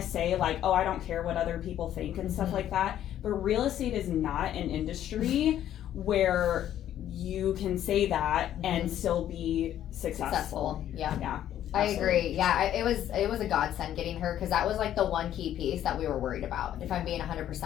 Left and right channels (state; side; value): quieter; right; 11.4 dB